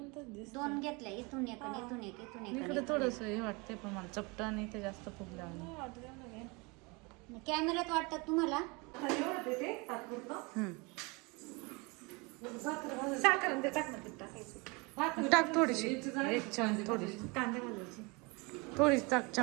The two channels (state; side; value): quieter; left; 28.1 dB